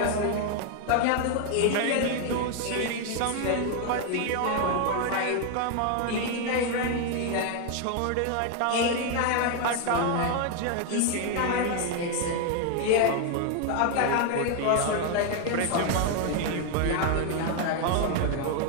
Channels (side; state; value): both; different; correlation 0.01